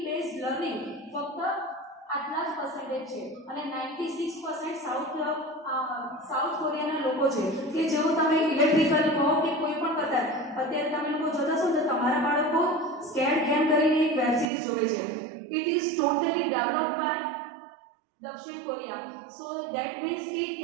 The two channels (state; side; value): drops out; left; at 14.5 s